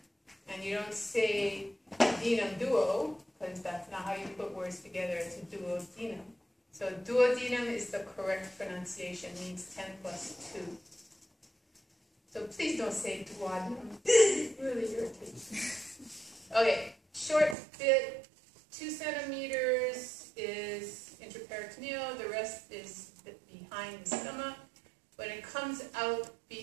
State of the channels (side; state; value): left; drops out; at 17.6 s